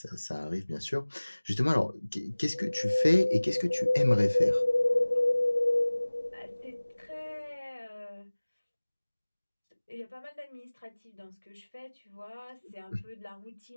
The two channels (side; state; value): both; inverted; correlation -1.00